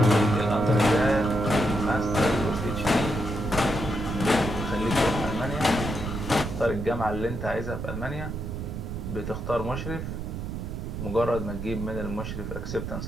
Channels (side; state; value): right; noise; rumble, 6 dB below the sound